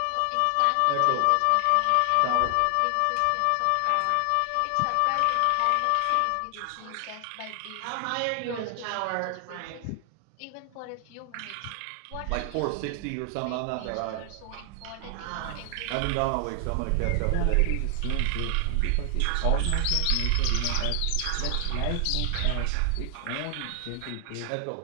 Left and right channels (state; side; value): different; both; correlation 0.00